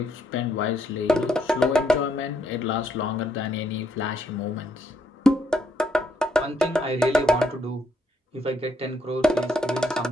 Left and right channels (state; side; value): normal; both; correlation 0.73